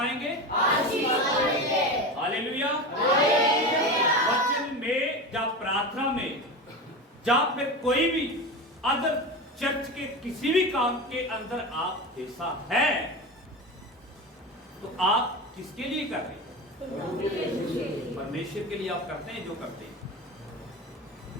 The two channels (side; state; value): both; normal; correlation 0.25